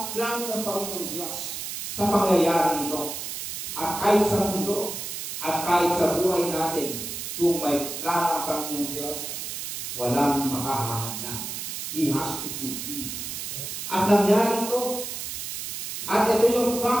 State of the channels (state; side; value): noise; right; hiss, 6 dB below the sound